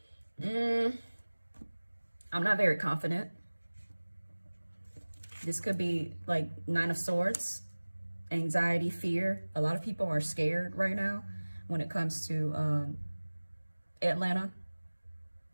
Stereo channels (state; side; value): inverted; both; correlation -1.00